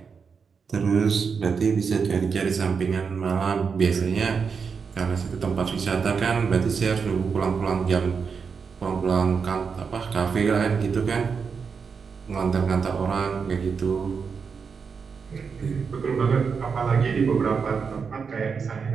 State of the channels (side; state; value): left; quieter; 5.7 dB